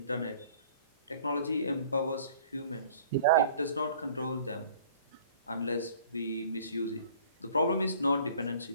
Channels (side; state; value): both; inverted; correlation -0.52